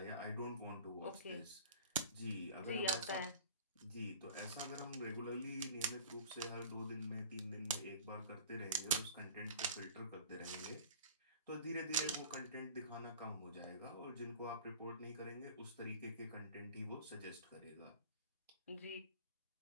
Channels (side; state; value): both; inverted; correlation -0.43